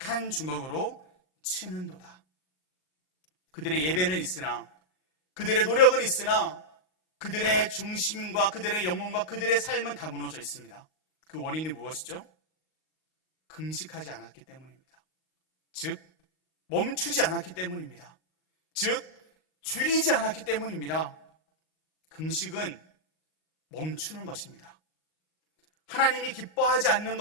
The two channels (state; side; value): late; right; 38 ms